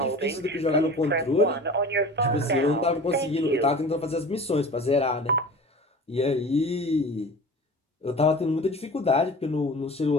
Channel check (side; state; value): both; normal; correlation 0.38